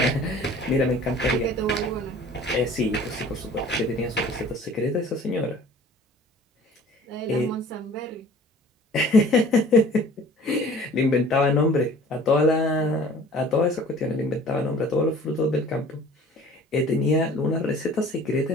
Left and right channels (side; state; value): both; normal; correlation 0.48